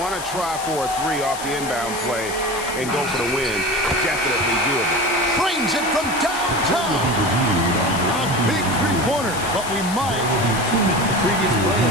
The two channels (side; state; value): left; noise; hiss, 10 dB below the sound